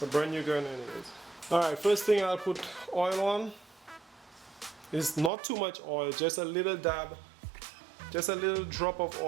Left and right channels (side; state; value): left; drops out; at 5.3 s